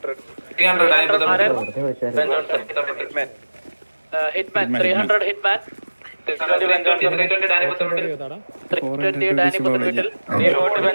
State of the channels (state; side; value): inverted; both; correlation -1.00